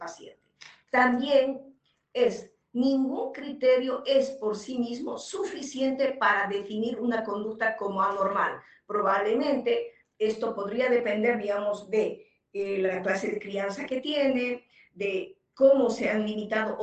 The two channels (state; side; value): identical; both; correlation 1.00